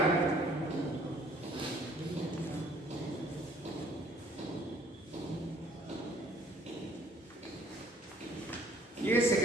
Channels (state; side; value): normal; both; correlation 0.59